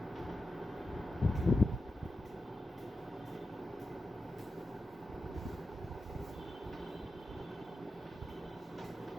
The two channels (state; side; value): normal; both; correlation 0.91